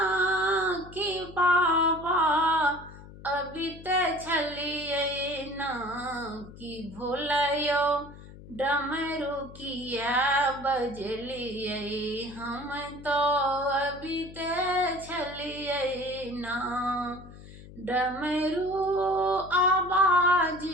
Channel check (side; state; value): left; noise; hum, 17 dB below the sound